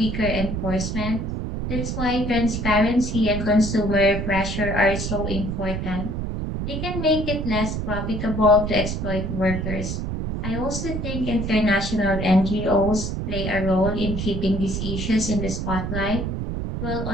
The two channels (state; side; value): noise; right; rumble, 3 dB below the sound